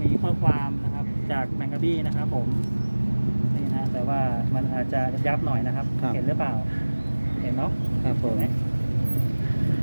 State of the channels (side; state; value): both; inverted; correlation -1.00